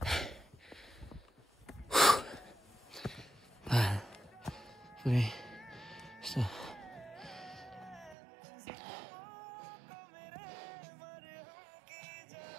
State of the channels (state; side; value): drops out; left; at 8.2 s